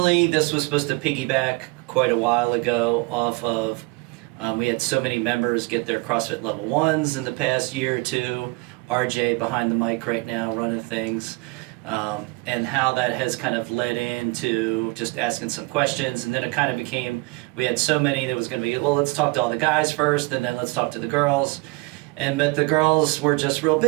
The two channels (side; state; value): left; quieter; 26.2 dB